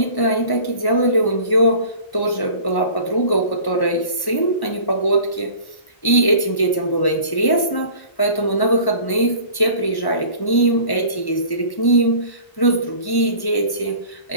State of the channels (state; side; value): late; right; 1.1 ms